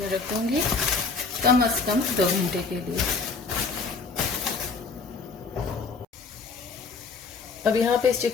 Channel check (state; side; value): quieter; right; 4.6 dB